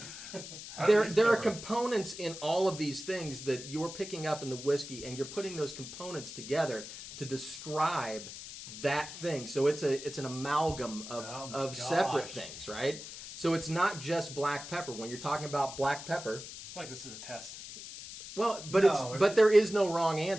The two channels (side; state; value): left; noise; hiss, 11 dB below the sound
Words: There are components in all of these things that you're picking up in the whiskey, and you're putting those components together to describe that thing. So it's an amalgam Oh my of separate gosh. things, right? So it's not just black pepper. When you're talking about black pepper, I feel like this is a test. well, but No, but there is no wrong